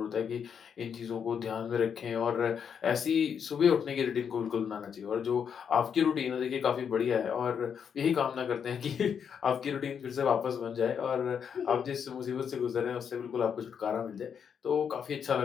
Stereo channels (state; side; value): quieter; right; 7.4 dB